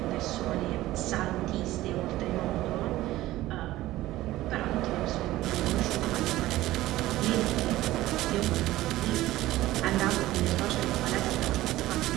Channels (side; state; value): left; quieter; 16.2 dB